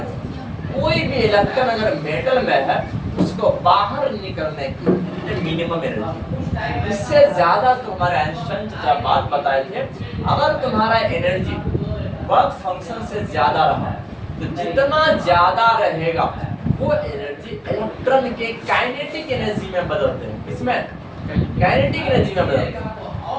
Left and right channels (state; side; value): identical; both; correlation 1.00